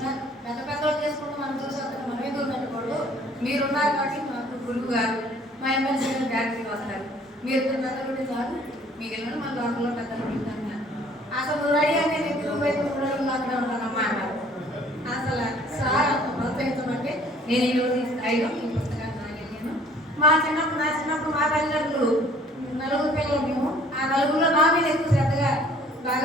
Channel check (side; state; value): both; normal; correlation 0.56